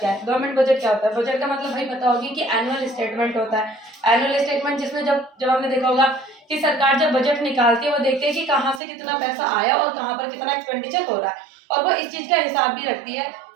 है। गवर्नमेंट बजट क्या होता है? बजट का मतलब भाई पता होगी कि एनुअल स्टेटमेंट होता है। एनुअल स्टेटमेंट जिसमें जब हमने देखा होगा कि सरकार जब बजट निकालती है वो देखते हैं कि कहाँ से कितना पैसा आया और कहाँ पर कितना एक्सपेंडिचर हो रहा है, और वो इस चीज का हिसाब भी रखती है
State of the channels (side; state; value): left; drops out; at 8.8 s